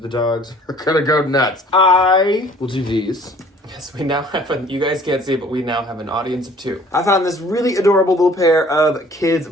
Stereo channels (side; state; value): both; normal; correlation 0.53